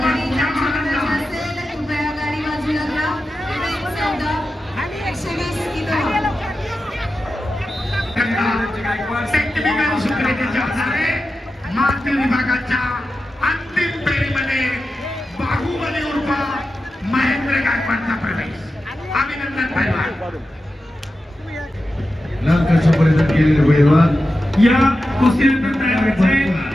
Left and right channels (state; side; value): normal; both; correlation 0.92